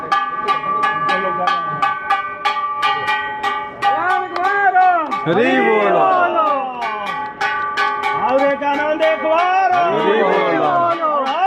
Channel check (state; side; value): identical; both; correlation 1.00